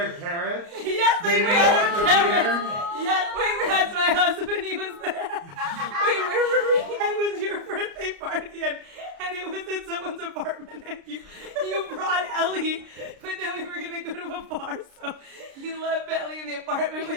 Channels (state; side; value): late; left; 29 ms